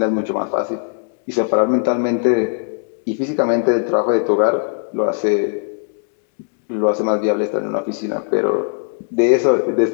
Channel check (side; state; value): right; silent; digital silence